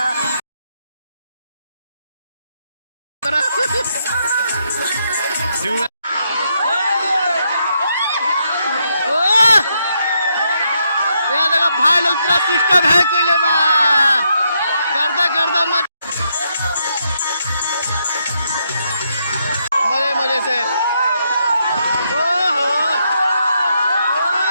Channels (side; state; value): both; inverted; correlation -0.78